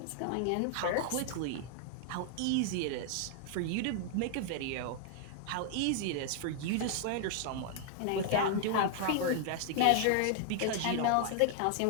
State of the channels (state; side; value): different; both; correlation 0.00